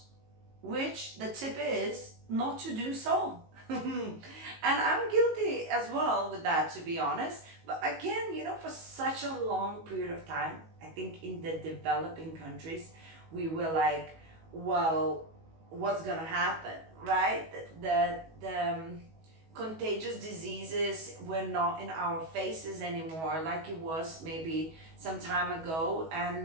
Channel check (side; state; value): left; late; 19 ms